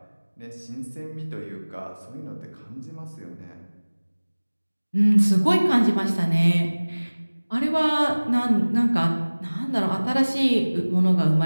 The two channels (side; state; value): both; inverted; correlation -1.00